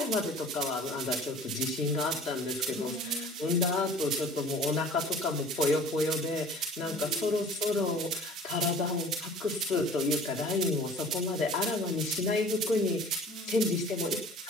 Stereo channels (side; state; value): both; normal; correlation 0.45